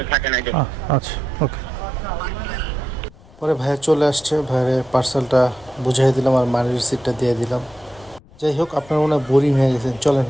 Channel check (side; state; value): left; noise; rumble, 25 dB below the sound